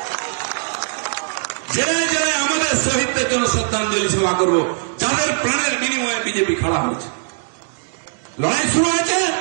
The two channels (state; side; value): silent; left; digital silence